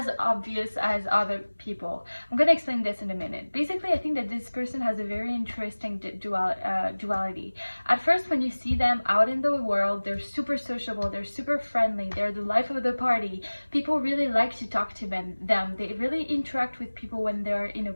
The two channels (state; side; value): inverted; both; correlation -1.00